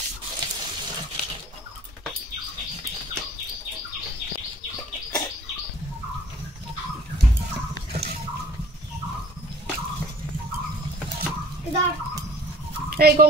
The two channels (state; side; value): normal; both; correlation 0.51